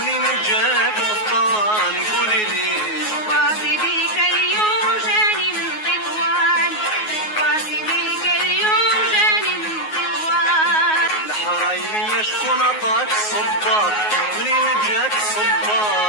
جاك القفطان قولي لي. باصي بيك اليوم جاني من تطوان، باصي بيك اليوم جاني من تطوان. الحرايمية شكون عطاك الصباط؟ منين جاك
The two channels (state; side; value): late; right; 9.4 ms